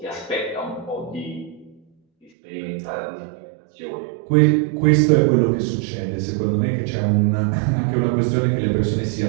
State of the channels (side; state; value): left; drops out; at 2.3 s